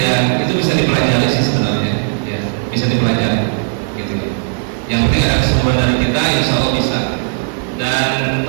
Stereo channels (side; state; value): left; silent; digital silence